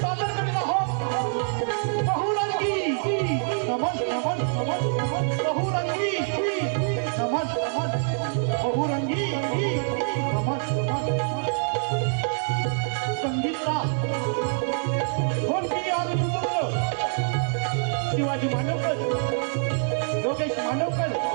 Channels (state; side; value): silent; left; digital silence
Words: Shivaji मानवकर, Yogesh Manavkar,